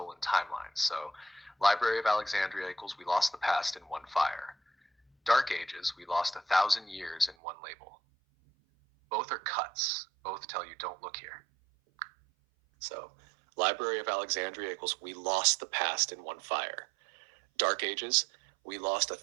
timelines. So Library of Alexandria equals we lost the past in one fire. Dark Ages, we lost 1,000 years in one label. Both are cuts. Both tell you don't look here. So, Library of Alexandria equals we lost the past in one fire. Dark Ages, we lost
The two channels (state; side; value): drops out; left; at 7.4 s